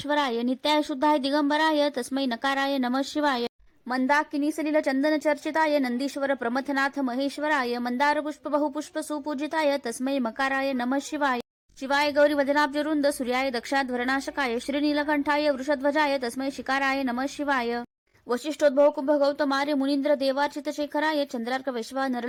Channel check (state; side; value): identical; both; correlation 1.00